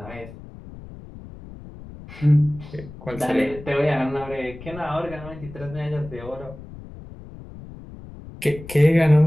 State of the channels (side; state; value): left; noise; rumble, 16 dB below the sound